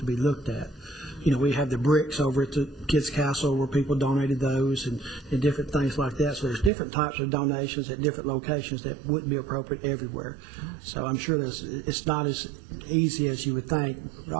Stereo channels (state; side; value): drops out; left; at 6.7 s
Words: be looked at. You know, we have the bricks over at the Kids Castle where people donated those and different things like that. So there's different types of donations at different locations that wouldn't be appropriate everywhere. So I'm sure it's not as easy as you would think